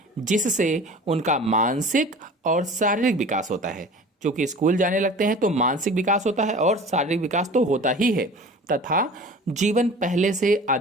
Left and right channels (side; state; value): both; normal; correlation 0.41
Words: जिससे उनका मानसिक और शारीरिक विकास होता है। क्योंकि स्कूल जाने लगते हैं तो मानसिक विकास होता है और शारीरिक विकास तो होता ही है, तथा जीवन पहले से